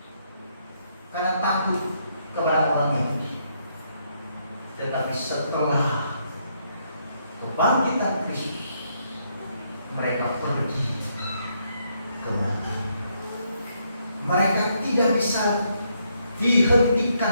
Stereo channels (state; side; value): inverted; both; correlation -0.74